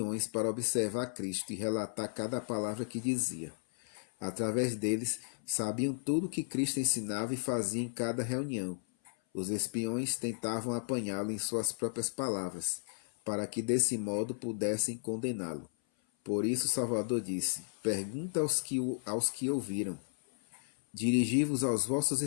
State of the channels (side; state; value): right; silent; 55 dB below the other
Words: para observar Cristo e relatar cada palavra que dizia. Através deles, sabiam tudo o que Cristo ensinava e fazia em cada reunião. Os espiões tentavam apanhá-lo em suas próprias palavras, para que desse modo pudessem condená-lo. Por isso Salvador disse: Pergunta aos que ouviram. Dirigi-vos aos vossos